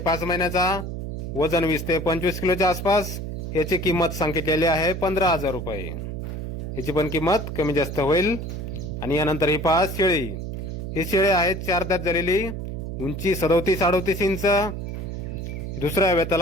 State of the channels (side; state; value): right; noise; hum, 6 dB below the sound